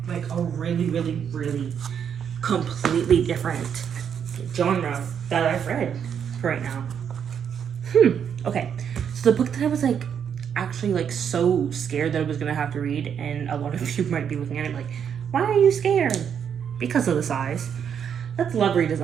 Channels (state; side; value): quieter; left; 8.0 dB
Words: Like, a really, really, really completely different genre that I've read right now. Okay. So, the book that I was, like, actually, like, so scared that I was gonna have to read, and a lot of you might be looking at it like, why are you scared? Because of the size. That's Love